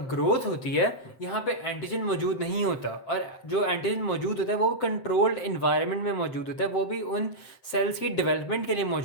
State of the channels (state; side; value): late; right; 7.7 ms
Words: ग्रोथ होती है। यहाँ पे एंटीजन मौजूद नहीं होता, और जो एंटीजन मौजूद होता है वो कंट्रोल्ड इन्वायरमेंट में मौजूद होता है, वो भी उन सेल्स की डेवलपमेंट के लिए